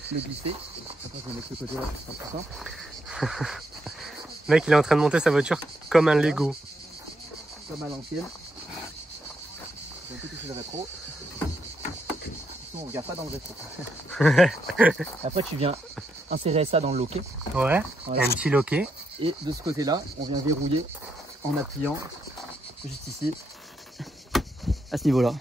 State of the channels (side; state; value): both; normal; correlation 0.79